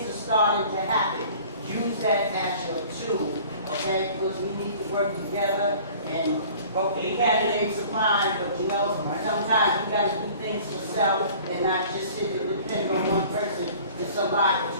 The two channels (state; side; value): inverted; both; correlation -0.48